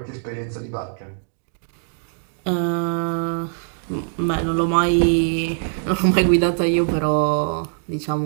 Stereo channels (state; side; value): silent; left; digital silence